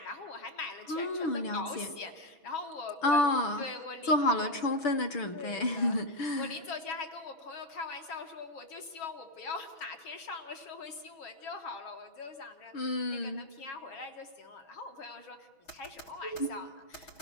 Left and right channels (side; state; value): right; late; 6.2 ms